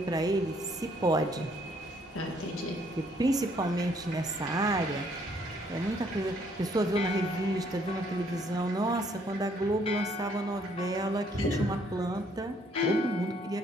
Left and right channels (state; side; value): normal; both; correlation 0.66